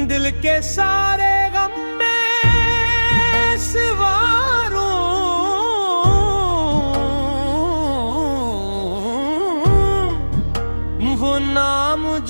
दिल के सारे गम में सिवारूं, वो नाम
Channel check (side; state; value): both; inverted; correlation -1.00